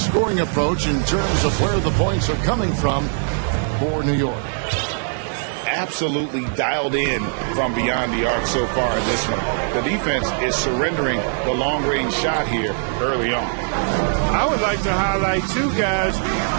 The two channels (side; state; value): left; silent; 65 dB below the other